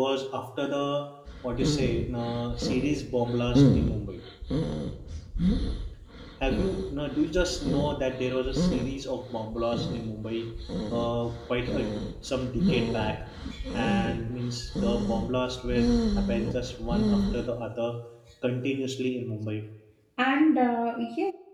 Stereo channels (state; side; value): identical; both; correlation 1.00